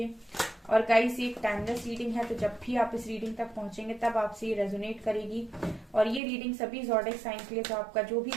और गाइस, ये एक टाइमलेस रीडिंग है तो जब भी आप इस रीडिंग तक पहुंचेंगे तब आपसे ये रेजोनेट करेगी। और ये रीडिंग सभी ज़ोडिएक साइन के लिए, तो आपका जो भी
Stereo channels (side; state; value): left; drops out; at 6.2 s